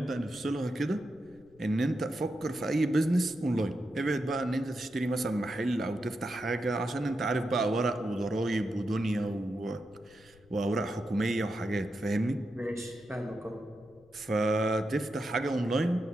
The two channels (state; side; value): noise; left; rumble, 28 dB below the sound